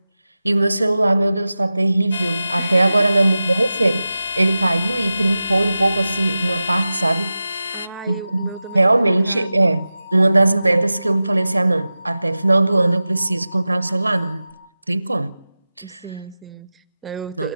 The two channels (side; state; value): both; inverted; correlation -0.94